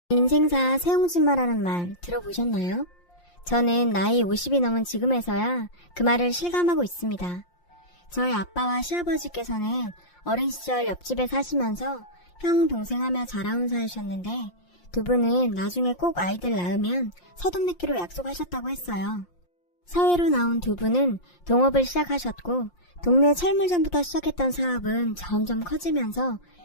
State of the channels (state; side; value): late; right; 5.7 ms